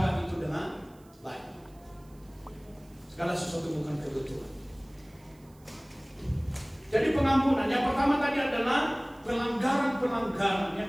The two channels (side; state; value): right; noise; hiss, 30 dB below the sound